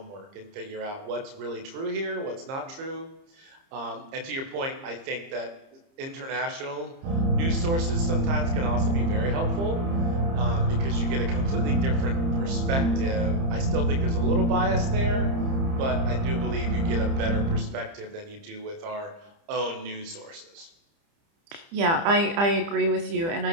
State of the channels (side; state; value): left; late; 30 ms